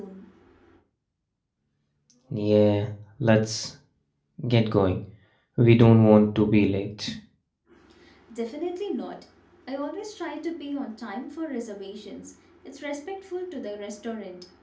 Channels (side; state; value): both; identical; correlation 1.00